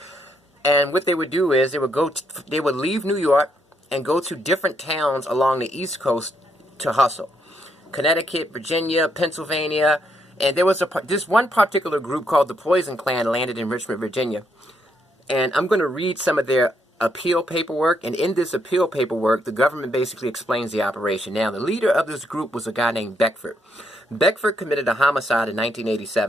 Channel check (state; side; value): normal; both; correlation 0.75